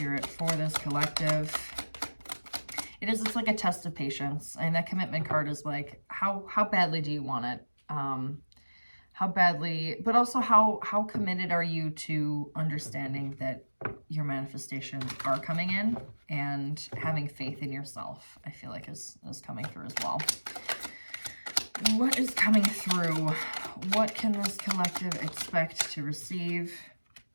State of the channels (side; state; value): both; inverted; correlation -1.00